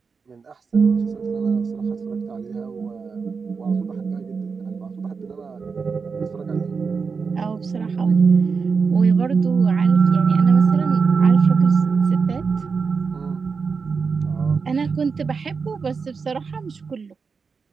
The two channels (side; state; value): left; quieter; 5.2 dB